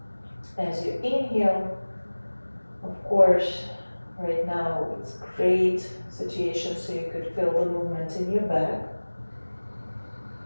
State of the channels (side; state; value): both; inverted; correlation -1.00